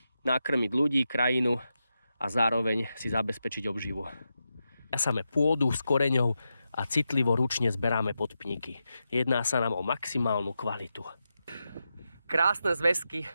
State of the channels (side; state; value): both; inverted; correlation -0.88